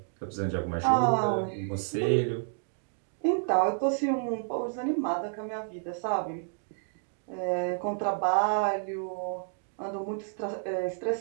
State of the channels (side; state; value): left; silent; digital silence